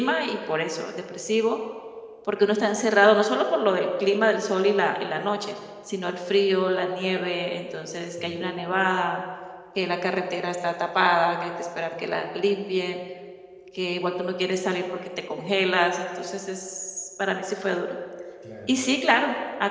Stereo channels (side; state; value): both; identical; correlation 1.00